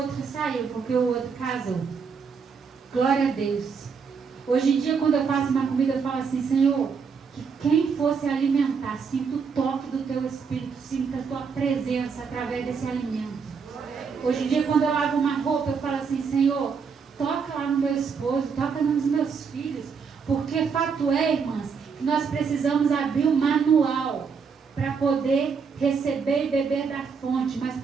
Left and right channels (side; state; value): left; quieter; 5.8 dB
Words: saiu, porque o outro casou. Glória a Deus. Hoje em dia, quando eu faço uma comida, eu falo assim: Senhor, que quem fosse alimentar, sinta o toque do teu Espírito, sinta a tua presença através desse alimento. Hoje em dia, quando eu lavo uma roupa, eu falo assim: Senhor, toca lá no meu esposo, toca nos meus filhos. Porque fato é, irmãs, que nós precisamos abrir o manual para poder receber e beber da fonte, mas